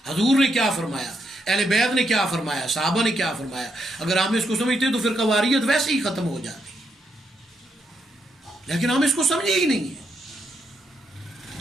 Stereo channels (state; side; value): normal; both; correlation 0.79